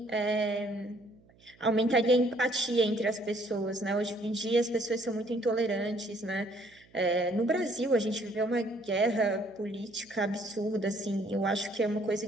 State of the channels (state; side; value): noise; right; hum, 29 dB below the sound